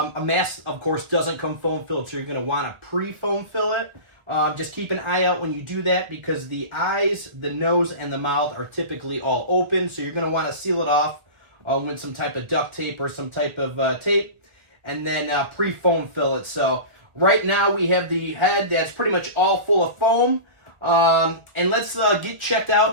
mask, of course, doesn't come foam filled, so you're going to want to pre-foam fill it. Just keep an eye out when you do that because the eyes, the nose, and the mouth are typically all open, so you're going to want to seal it off with some type of duct tape or some type of tape, and then pre-foam fill it. So right now we have the head that's pretty much all full of foam. And let's get checked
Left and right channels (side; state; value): left; late; 1.4 ms